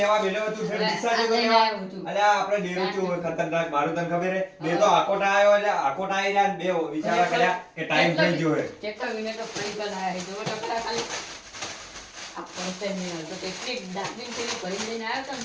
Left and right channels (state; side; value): identical; both; correlation 1.00